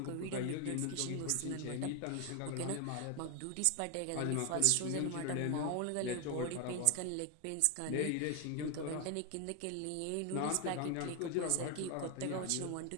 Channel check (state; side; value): different; both; correlation 0.01